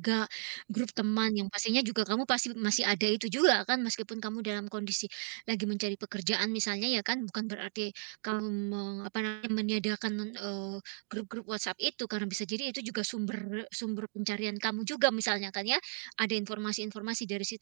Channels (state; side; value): silent; left; digital silence